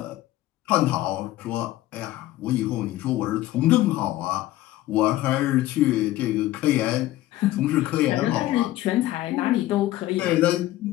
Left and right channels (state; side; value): quieter; right; 15.5 dB